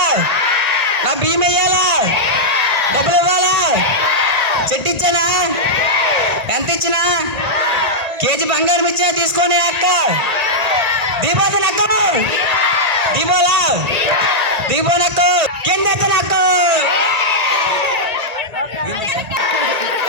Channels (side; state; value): left; late; 1.8 ms